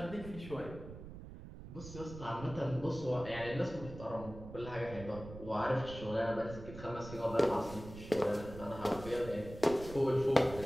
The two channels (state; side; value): noise; right; rumble, 13 dB below the sound